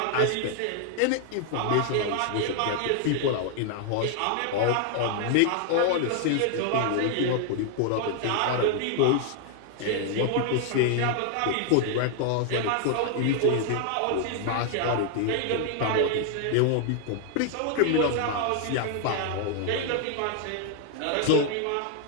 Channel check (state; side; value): different; both; correlation 0.00